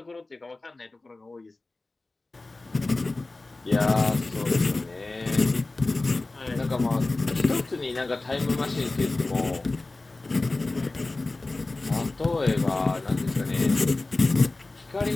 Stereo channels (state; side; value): quieter; right; 3.2 dB